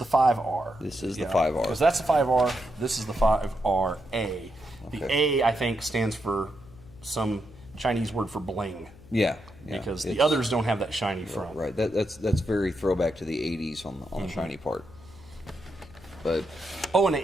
5R. This is the 5R. Because that's the 5R. This is the 5RA. Okay. The A, I think, stands for some Chinese word for bling. Yeah. Because the others don't have that shiny front. Right. That's very throwback to the 80s on the shiny part. But and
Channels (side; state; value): left; noise; hum, 22 dB below the sound